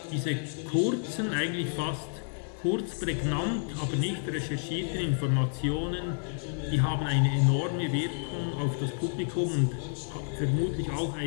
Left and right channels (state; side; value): silent; right; 58 dB below the other